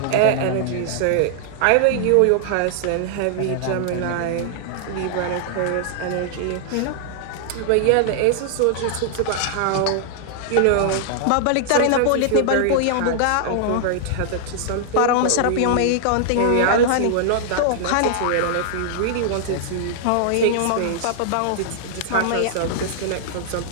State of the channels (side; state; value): both; different; correlation -0.01